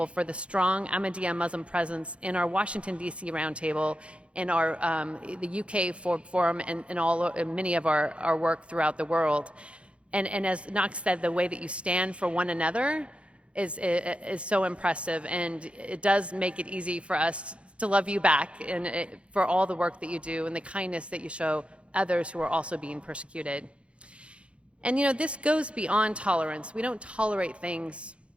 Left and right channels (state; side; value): late; left; 0.060 ms